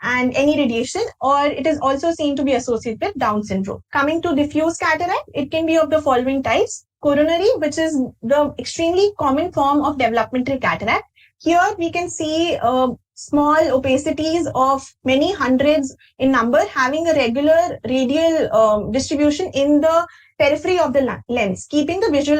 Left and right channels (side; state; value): both; identical; correlation 1.00